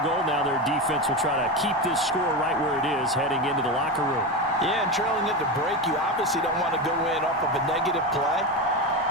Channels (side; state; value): both; normal; correlation 0.18